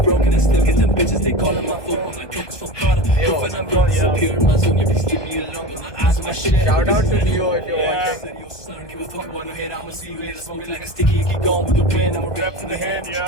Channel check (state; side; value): late; right; 1.2 ms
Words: broken, and still get them bitches. They calling my phone. My coke is from Prada. Yo, when I'm gone, disappear in my zone. You please leave me alone, but my eyes on my shit. Shout out to Leo if you're watching. Said, yo, son, give a fuck about no hit. I'ma see you later. Smoking like a sticky, you keep going with the wind. I'm a rap from the hand, yeah.